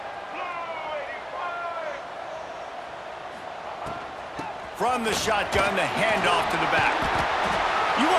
From the shotgun, the handoff to the back. You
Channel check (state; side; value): identical; both; correlation 1.00